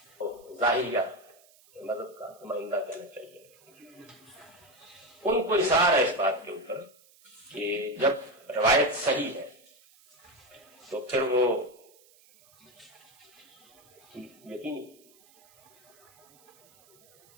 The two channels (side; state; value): right; noise; hiss, 28 dB below the sound